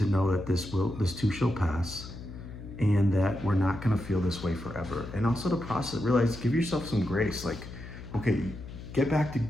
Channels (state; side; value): noise; left; hum, 12 dB below the sound